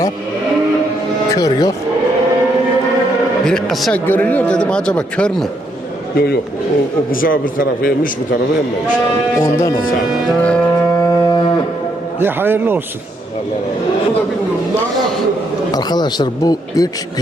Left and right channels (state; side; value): normal; both; correlation 0.75